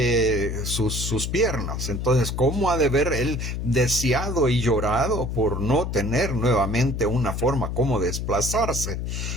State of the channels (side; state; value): left; noise; hum, 3 dB below the sound